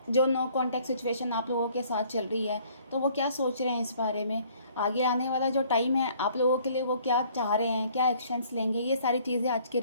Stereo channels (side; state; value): both; inverted; correlation -0.59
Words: जो नो कॉन्टैक्ट सिचुएशन आप लोगों के साथ चल रही है, तो वो क्या सोच रहे हैं इस बारे में। आगे आने वाला जो टाइम है आप लोगों के लिए, वो क्या चाह रहे हैं, क्या एक्शंस लेंगे, ये सारी चीज़ें आज की